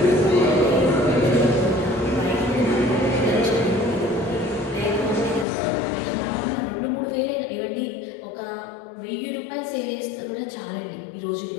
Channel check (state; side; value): drops out; right; at 5.5 s